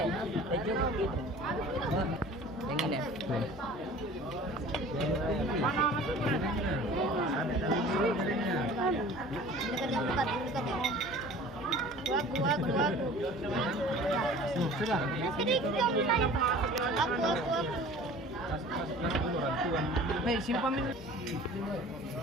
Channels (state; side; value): normal; both; correlation 0.44